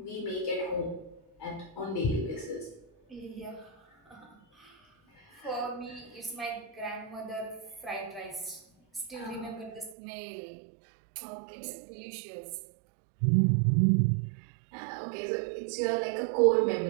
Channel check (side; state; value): left; drops out; at 10.0 s